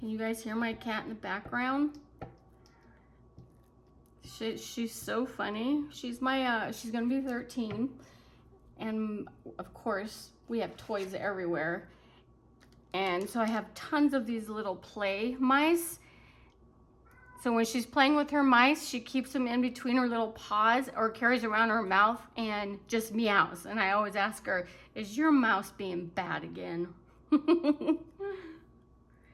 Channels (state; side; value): identical; both; correlation 1.00